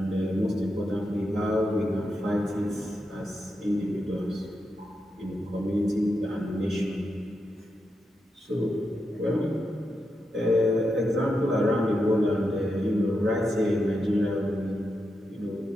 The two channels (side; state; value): both; normal; correlation 0.86